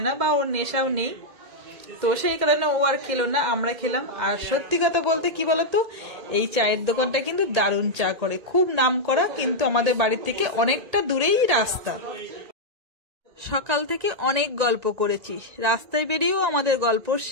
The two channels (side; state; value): left; late; 1.8 ms